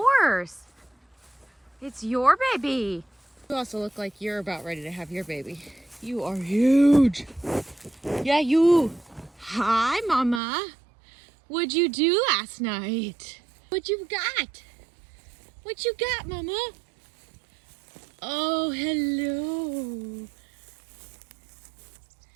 It's your baby. You also look like you're about ready to have your baby. You are huge. Yeah, you. Hi, Mama. What'd you do last night? What you got? What you got, Mama? Oh, hello.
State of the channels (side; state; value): left; drops out; at 10.4 s